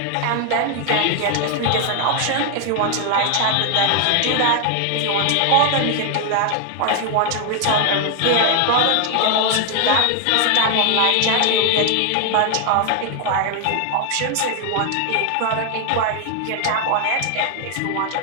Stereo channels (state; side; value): different; both; correlation 0.00